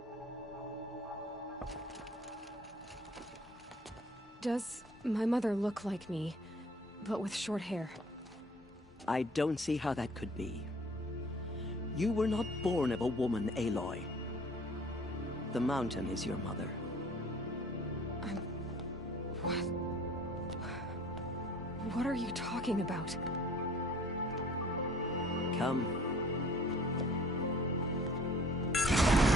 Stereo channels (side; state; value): both; normal; correlation 0.52